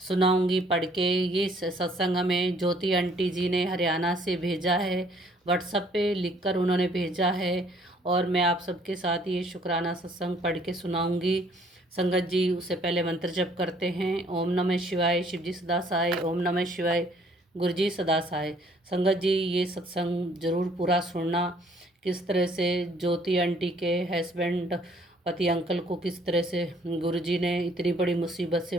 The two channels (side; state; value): both; normal; correlation 0.61